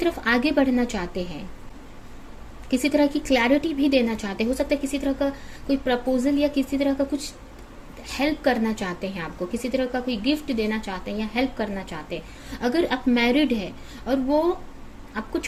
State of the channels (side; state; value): both; identical; correlation 1.00